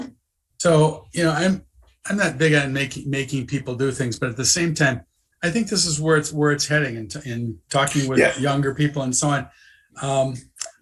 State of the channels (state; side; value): identical; both; correlation 1.00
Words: So, I'm not big on making people do things, but at the same time, I think this is where it's heading. In talking with younger people and so on,